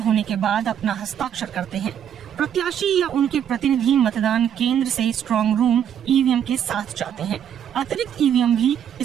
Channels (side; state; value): left; quieter; 9.2 dB